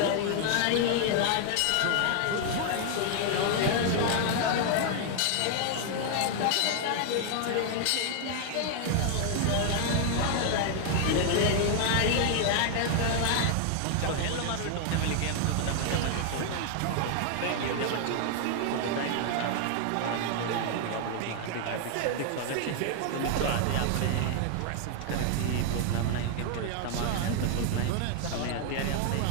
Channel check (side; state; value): both; different; correlation 0.00